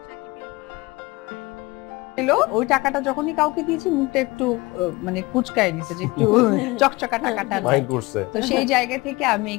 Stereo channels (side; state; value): right; quieter; 22.6 dB